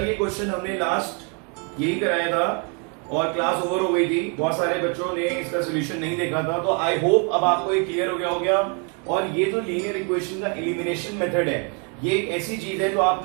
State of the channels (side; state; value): left; quieter; 36.4 dB